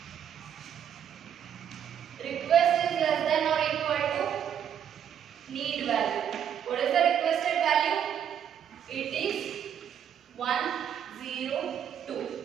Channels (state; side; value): quieter; left; 9.0 dB